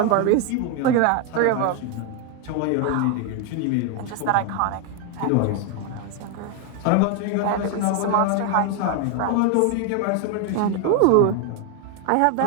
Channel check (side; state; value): both; different; correlation 0.01